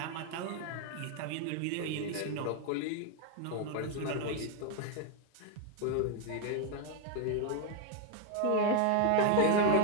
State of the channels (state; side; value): different; both; correlation 0.01